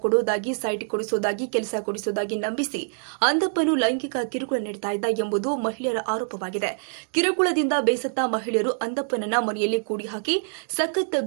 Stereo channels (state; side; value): silent; left; digital silence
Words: ಕೊಡುವುದಾಗಿ, ಸೈಟ್ ಕೊಡಿಸುವುದಾಗಿ, ಕೆಲಸ ಕೊಡಿಸುವುದಾಗಿ ನಂಬಿಸಿ ಅಂದಪ್ಪನು ಲೈಂಗಿಕ ಕಿರುಕುಳ ನೀಡುತ್ತಾ ಇದ್ದ ಎಂಬುದು ಮಹಿಳೆಯರ ಆರೋಪವಾಗಿದೆ. ಕಿರುಕುಳದಿಂದ ಬೇಸತ್ತ ಮಹಿಳೆಯರು ಅಂದಪ್ಪನನ್ನ ಮನೆಯಲ್ಲಿ ಕೂಡಿ ಹಾಕಿ ಸಖತ್